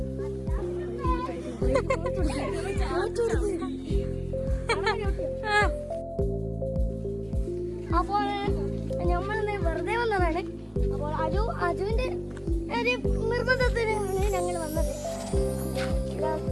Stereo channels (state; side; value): identical; both; correlation 1.00